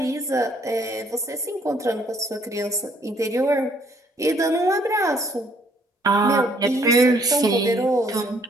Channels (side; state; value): both; normal; correlation 0.64